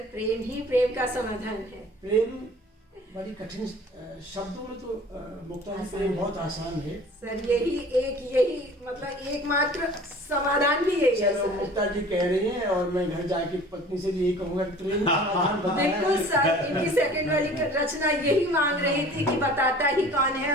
प्रेम ही प्रेम का समाधान है। प्रेम बड़ी कठिन शब्दों में तो मुक्ता जी प्रेम बहुत आसान है सर। यही मतलब एकमात्र समाधान भी यही है चलो सर। मुक्ता जी कह रही हैं और मैं घर जाके पत्नी से भी यही कहूंगा कि प्रेम का समाधान बताया बिल्कुल है। सर। इनकी सेकंड वाली रचना यही मांग रही थी कि बताता ही कौन है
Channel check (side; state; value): both; normal; correlation 0.46